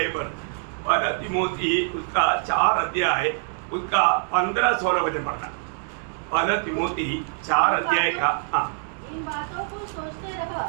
पर 1 तीमुथी उसका 4 अध्याय उसका 15-16 वचन पढ़ना। 1 तीमुथी 4 अध्याय का। हाँ, इन बातों को सोचते रह,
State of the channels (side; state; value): left; silent; 62 dB below the other